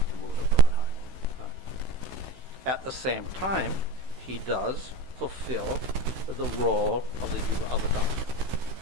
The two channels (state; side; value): late; left; 16 ms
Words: the mood of Radha. At the same time, he does fulfill the role of the Yuga Avatar.